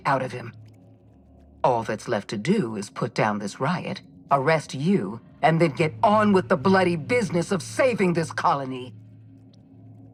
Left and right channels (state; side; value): identical; both; correlation 1.00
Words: out of him. All that's left to do is put down this riot, arrest you, and then get on with the bloody business of saving this colony.